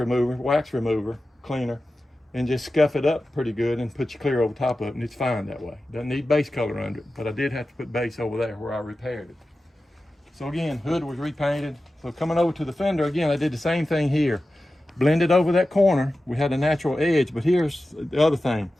wax remover, cleaner, and just scuff it up pretty good and put your clear over top of it, and it's fine that way. Doesn't need base color under it, but I did have to put base over there where I repaired it. So again, hood was repainted. So coming over to the fender, again, I did the same thing here. Blended over that corner. We had a natural edge, but here's the other thing.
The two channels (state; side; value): normal; both; correlation 0.94